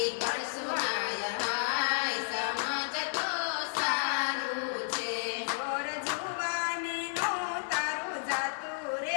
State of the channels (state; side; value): silent; right; 56 dB below the other